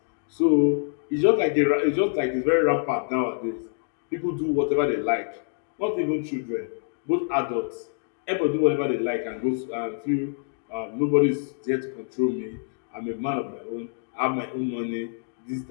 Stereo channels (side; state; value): right; silent; digital silence